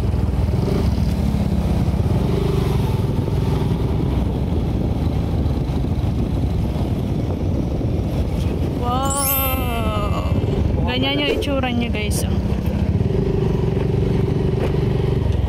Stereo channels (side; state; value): both; identical; correlation 1.00